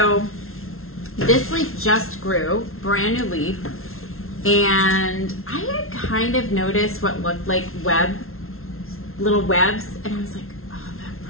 this leaf just grew, brand new leaf, and I had kind of noticed what looked like little webs, and I was like, oh,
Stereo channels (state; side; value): late; right; 0.62 ms